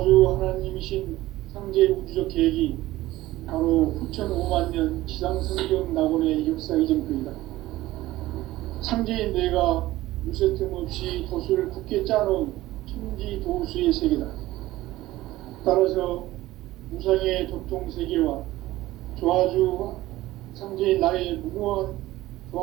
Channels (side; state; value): left; quieter; 16.8 dB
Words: 하나님이신 상제 우주적 계획이 바로 후천 5만년 지상성경 낙원의 역사 이정표이다. 상제인 내가 무쇠틈 없이 도수를 굳게 짜놓은 천지 도수의 세계다. 따라서 무상의 도통 세계와 조화주 상제인 나의 무궁한